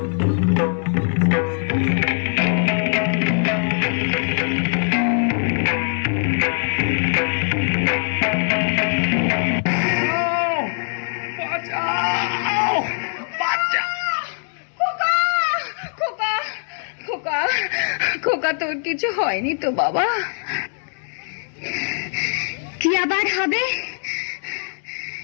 খোকা, খোকা, খোকা, তোর কিছু হয়নি তো বাবা? কি আবার হবে?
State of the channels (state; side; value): silent; right; 64 dB below the other